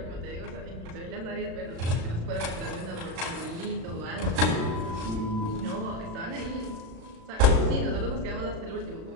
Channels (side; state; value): left; late; 36 ms